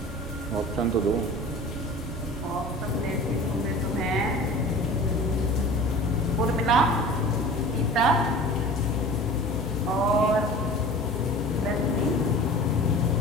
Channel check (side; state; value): both; normal; correlation 0.40